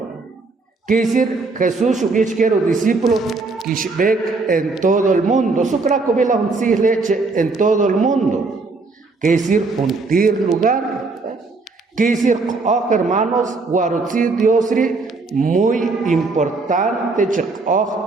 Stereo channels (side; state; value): left; quieter; 3.8 dB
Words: Quiere decir, Jesús hubiera los discípulos que en todo el mundo. Su craco ve la leche en todo el mundo. Quiere decir, juntir lugar. Quiere decir, oh hermanos, guarutzi diosri, muy importante,